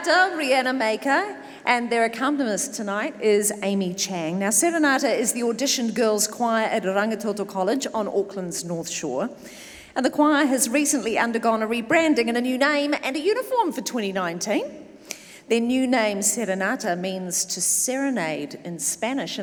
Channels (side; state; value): both; identical; correlation 1.00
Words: Rihanna Maker, and their accompanist tonight is Amy Chang. Now, Serenata is the auditioned girls' choir at Rangitoto College on Auckland's North Shore, and the choir has recently undergone a rebranding and a new name and a uniform for 2019. Their new name, Serenata, means to serenade in Spanish,